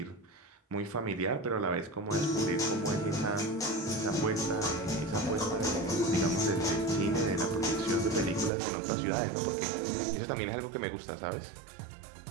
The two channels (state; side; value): drops out; left; at 8.5 s